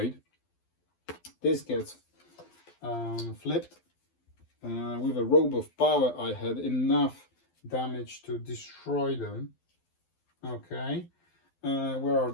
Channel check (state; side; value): late; right; 12 ms